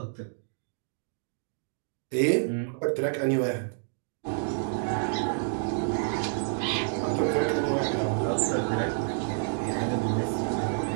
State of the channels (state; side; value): silent; left; digital silence